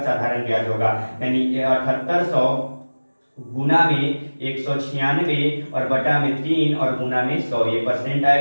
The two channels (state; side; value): inverted; both; correlation -1.00